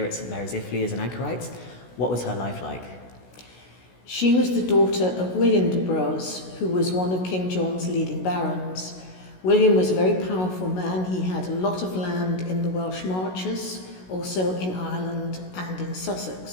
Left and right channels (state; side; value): late; right; 16 ms